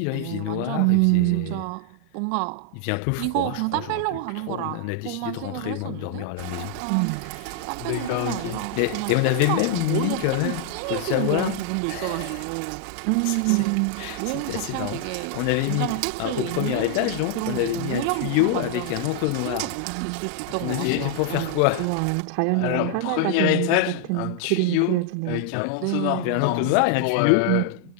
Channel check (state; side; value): different; both; correlation 0.00